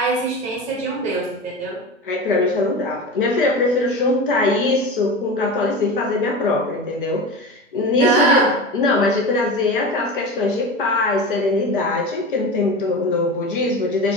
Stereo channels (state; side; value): normal; both; correlation 0.28